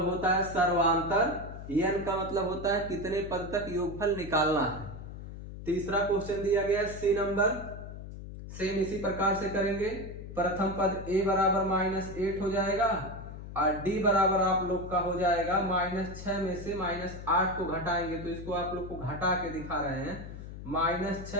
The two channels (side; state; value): left; noise; hum, 11 dB below the sound